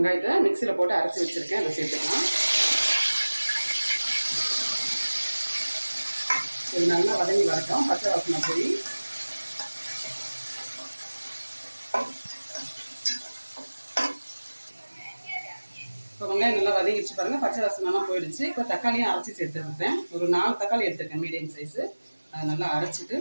மிக்சியில் போட்டு அரைச்சி வச்சுருக்கேன், அதை சேர்த்துக்கலாம். இது நல்லா வதங்கி வரட்டும், பச்சை வாசனை போய். இப்போ வெங்காயம் நல்லா வதங்கிடுச்சு பாருங்கள், பச்சை வாசனைலாம் போயிடுச்சு. இப்போ தக்காளியும் அரைச்சி சேர்த்துருக்கேன். ஒரு 4 தக்காளி எடுத்துருக்கேன் மீடியம் சைஸு. அதை நல்லா அரைச்சிட்டு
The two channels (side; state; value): both; inverted; correlation -1.00